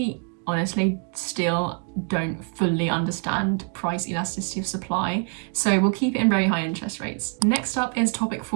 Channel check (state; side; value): quieter; left; 34.6 dB